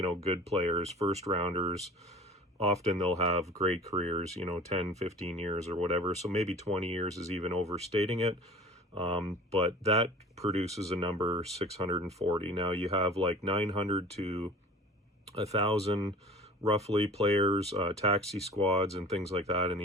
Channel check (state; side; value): normal; both; correlation 0.42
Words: good players, first rounders, often they'll have great careers, 10, 15 years or whatever. So maybe 20 years is even overstating it. But that produces a number 640. Now you have like 900 to 1,000 roughly players, taxi squads and things like that in